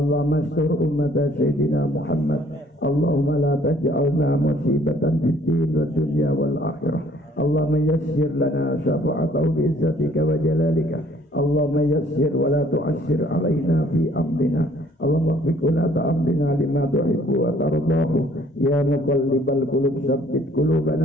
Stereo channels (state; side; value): normal; both; correlation 0.60